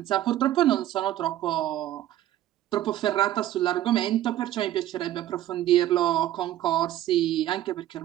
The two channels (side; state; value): left; quieter; 13.2 dB